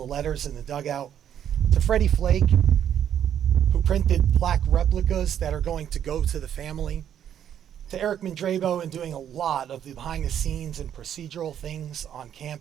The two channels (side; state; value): left; quieter; 9.7 dB